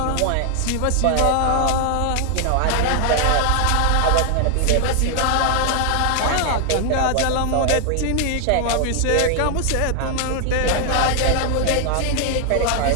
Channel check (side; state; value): both; different; correlation 0.00